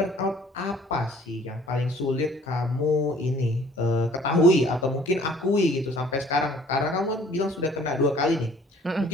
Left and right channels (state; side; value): normal; both; correlation 0.55